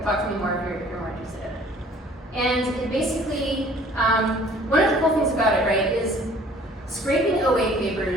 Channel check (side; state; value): both; normal; correlation 0.53